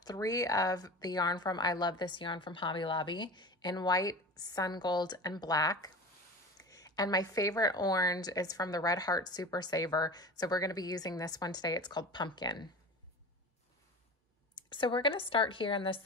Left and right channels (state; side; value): normal; both; correlation 0.34